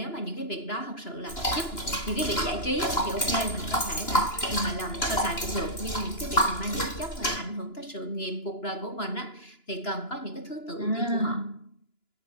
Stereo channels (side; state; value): right; late; 2.9 ms